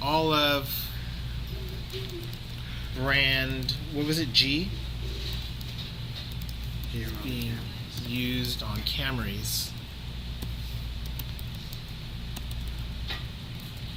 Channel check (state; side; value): identical; both; correlation 1.00